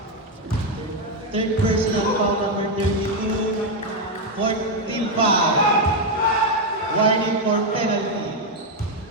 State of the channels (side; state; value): both; normal; correlation 0.04